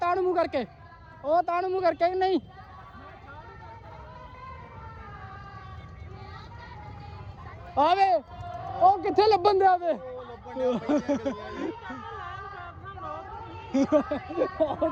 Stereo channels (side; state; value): both; identical; correlation 1.00